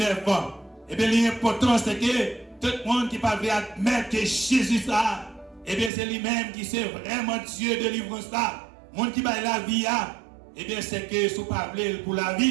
Et bien l'important, c'est que tout le monde qui va admettre que Jésus ça, et bien c'est lui-même qui c'est vraiment Dieu de délivrance là. Le monde qui va la vie, et bien c'est que si vous parlez pour la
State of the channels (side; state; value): left; drops out; at 5.9 s